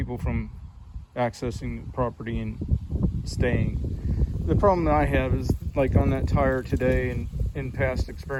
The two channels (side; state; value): both; identical; correlation 1.00